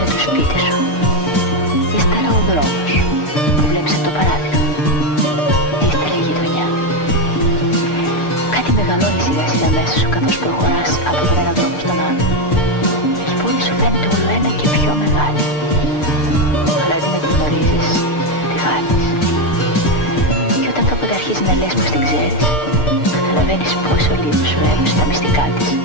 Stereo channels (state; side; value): late; right; 6.7 ms